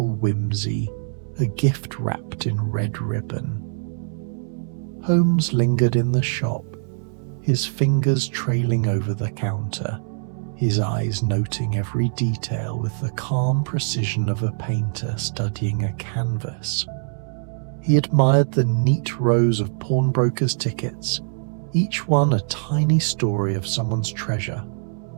whimsy, a gift wrapped in red ribbon. Holmes lingered in the shop, his fingers trailing over the counter, his eyes noting every detail with the calm precision of a painter studying a canvas. He admired the neat rows of pawnbrokers' tickets, each one a tiny story of someone's treasure,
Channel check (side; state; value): left; silent; 62 dB below the other